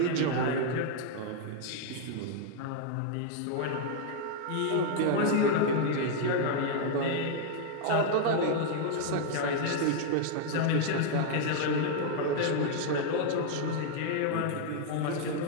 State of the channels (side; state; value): both; different; correlation 0.00